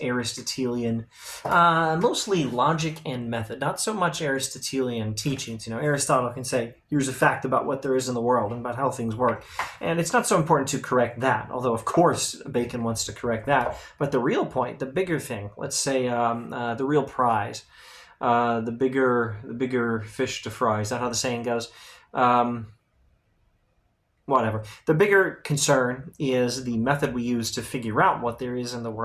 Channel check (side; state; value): both; identical; correlation 1.00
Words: Aristotelian, mostly logic and method, not so much Aristotelian teachings. Aristotle can say, here's a fact about what there is in the world and about how things work. And it's not so important to correct that, although of course Bacon wants to correct that. But the real point, the bigger thing, let's say the real prize, the bigger fish to fry, is that how the saying goes? Whatever. The bigger concern is the method we use to figure out what there is in the